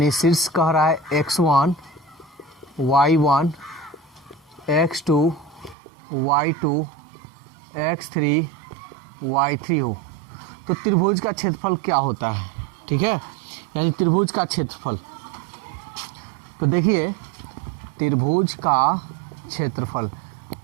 शीर्ष कह रहा है x1 y1 x2 y2 x3 y3 हो तो त्रिभुज का क्षेत्रफल क्या होता है। ठीक है, यानी त्रिभुज का क्षेत्रफल। तो देखिए त्रिभुज का क्षेत्रफल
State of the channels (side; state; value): left; drops out; at 5.8 s